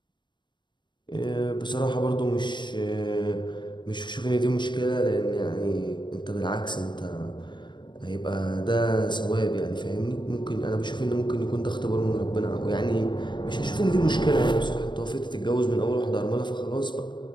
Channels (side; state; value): right; late; 0.22 ms